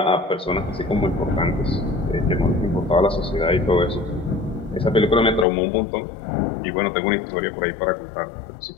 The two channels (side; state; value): right; drops out; at 5.5 s